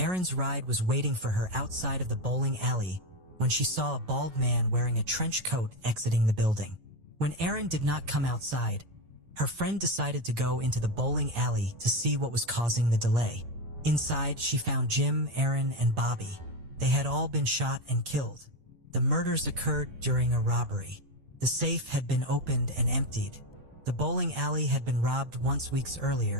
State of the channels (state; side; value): late; left; 8.8 ms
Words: ride was waiting for her outside of the bowling alley when she saw a bald man wearing a trench coat exiting the building. When Aaron did not come outside, her friend decided to go into the bowling alley to see what was causing the delay. Inside, she found Jim, Aaron, and Bobby. They had all been shot and killed. The murders occurred during a robbery. The safe had been opened and emptied. The bowling alley had been robbed once weeks